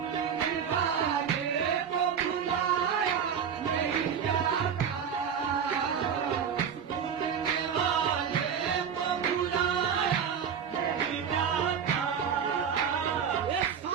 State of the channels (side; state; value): left; quieter; 7.5 dB